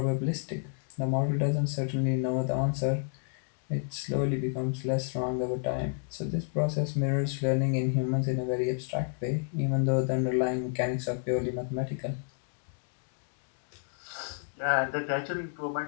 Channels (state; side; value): silent; right; digital silence